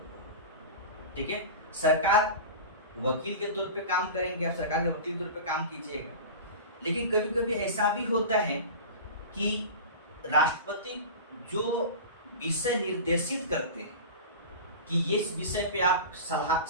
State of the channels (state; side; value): inverted; both; correlation -0.31